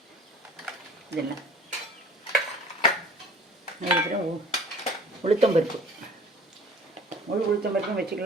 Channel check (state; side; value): normal; both; correlation 0.48